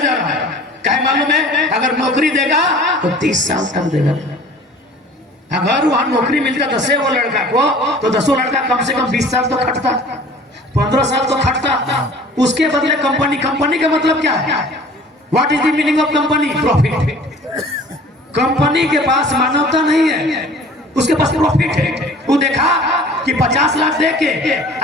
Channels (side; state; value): both; normal; correlation 0.46